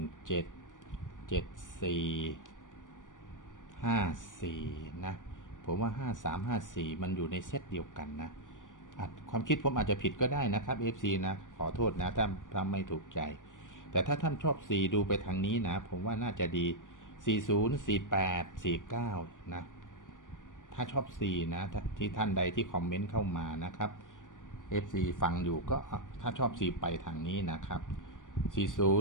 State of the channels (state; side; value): late; right; 0.88 ms